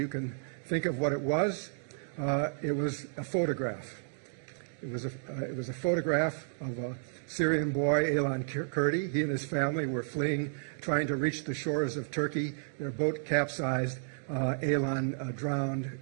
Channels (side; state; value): left; silent; digital silence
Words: can think of what it was. It was a photograph. It was a photograph of a Syrian boy, Aylan Kurdi. He and his family were fleeing, trying to reach the shores of Turkey. Their boat capsized. Aylan drowned